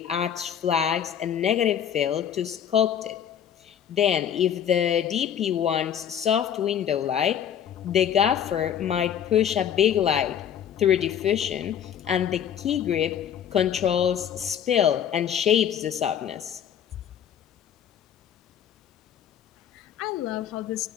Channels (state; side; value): quieter; right; 9.3 dB